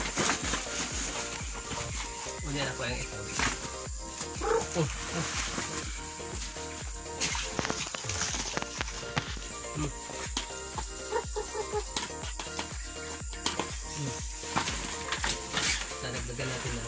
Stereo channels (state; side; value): identical; both; correlation 1.00